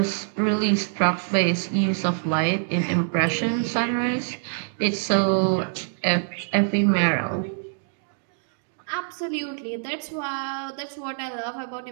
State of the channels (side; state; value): left; silent; digital silence